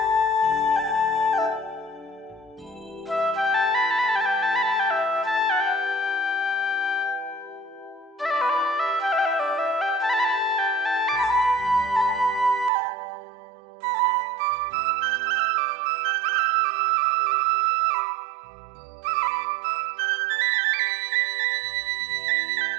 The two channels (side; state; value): left; drops out; at 12.7 s